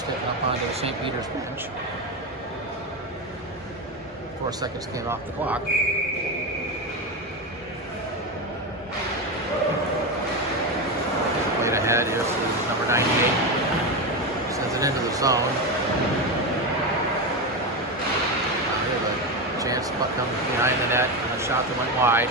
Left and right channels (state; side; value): normal; both; correlation 0.15